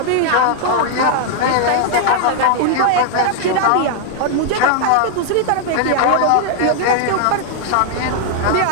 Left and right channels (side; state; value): both; different; correlation -0.01